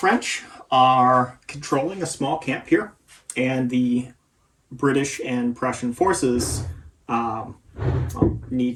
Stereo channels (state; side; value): identical; both; correlation 1.00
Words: are controlling a small camp here, and the British and Prussian forces need